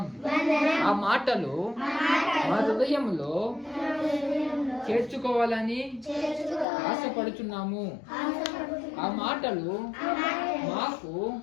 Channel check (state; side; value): drops out; right; at 6.7 s